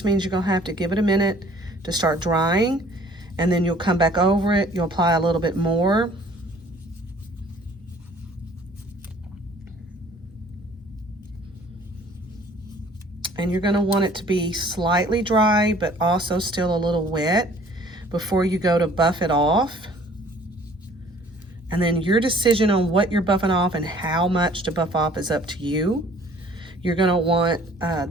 means you're going to have to give it a minute to start drying, and then you'll come back over it, you'll apply a little bit more. And you're going to want it to be slightly dry, but also still a little wet before you go to buff it off. And then your decision on what you're buffing off and how much to buff off is up to you. You're going to want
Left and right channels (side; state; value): both; normal; correlation 0.54